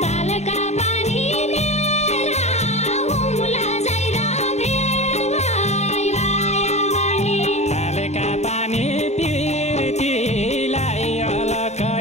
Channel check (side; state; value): right; late; 0.32 ms